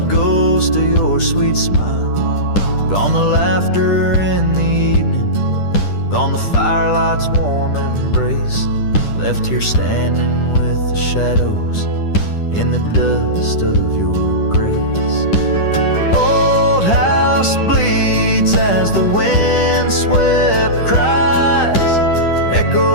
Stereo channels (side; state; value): right; late; 10 ms